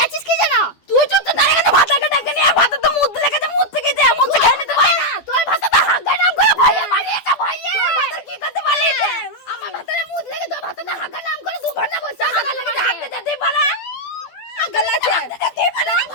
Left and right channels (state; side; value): late; right; 12 ms